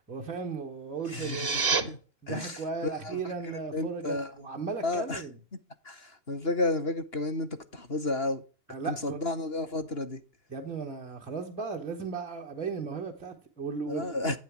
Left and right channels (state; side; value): late; right; 2.9 ms